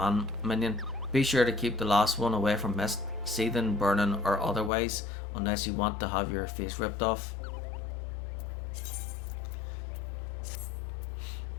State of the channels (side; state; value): right; drops out; at 4.7 s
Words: minion. Be sure to keep the last one away from mist, seething, burning, or otherwise, unless you want to have your face ripped off.